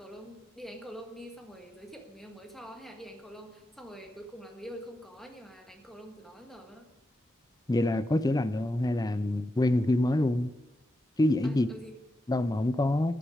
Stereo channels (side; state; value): both; normal; correlation 0.88